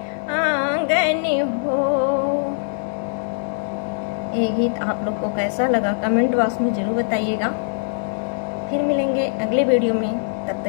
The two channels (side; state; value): right; silent; digital silence